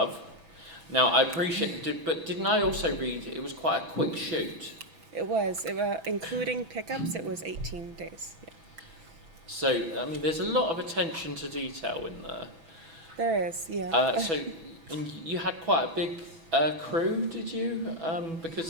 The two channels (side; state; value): left; late; 6.1 ms